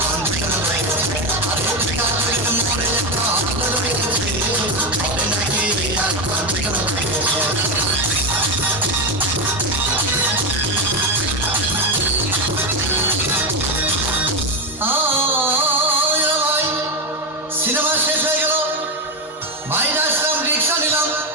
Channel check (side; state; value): both; normal; correlation 0.11